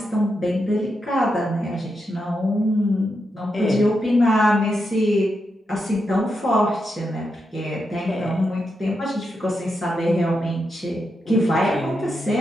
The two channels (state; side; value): normal; both; correlation 0.85